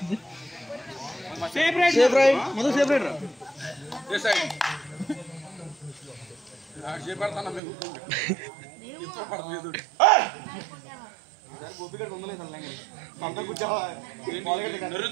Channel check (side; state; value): left; drops out; at 7.6 s